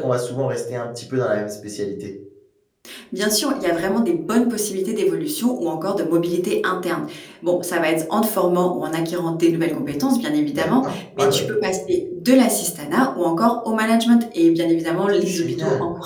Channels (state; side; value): identical; both; correlation 1.00